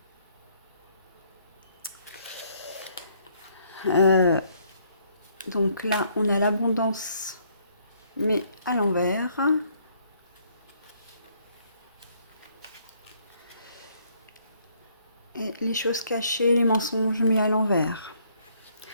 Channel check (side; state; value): both; inverted; correlation -0.67